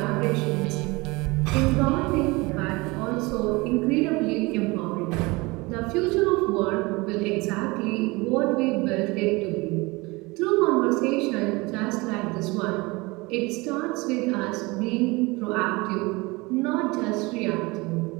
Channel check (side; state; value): left; quieter; 24.1 dB